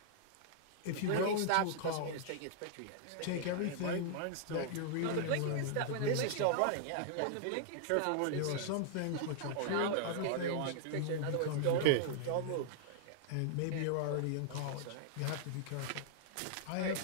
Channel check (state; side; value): different; both; correlation -0.01